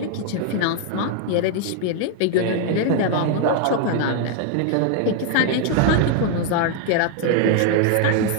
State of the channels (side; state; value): both; different; correlation 0.00